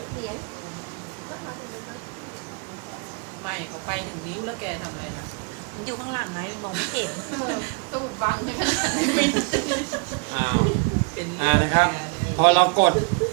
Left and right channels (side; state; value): left; quieter; 34.6 dB